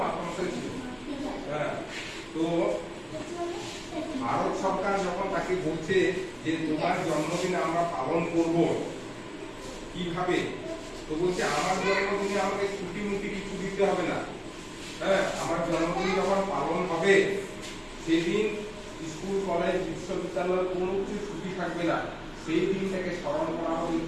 মাস্টারমশাই ছিল। তো ভারত সরকার যখন তাকে বলছে যে তোমার জন্মদিন আমরা পালন করব কিভাবে, তো বলছে আমার জন্মদিনে আমাকে ছুটি মুটি কিছু দিতে হবে না। আমার জন্মদিন যখন পালন হবে সেদিন স্কুল কলেজ বিশ্ববিদ্যালয় কোনো কিছু ছুটি থাকবে না। সেই দিনটাকে স্মরণ করা হবে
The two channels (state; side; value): identical; both; correlation 1.00